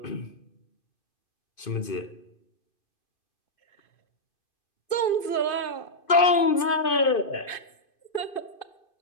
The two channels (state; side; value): late; right; 2.5 ms